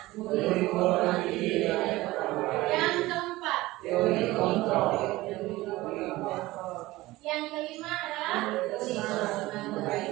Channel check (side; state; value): left; quieter; 18.6 dB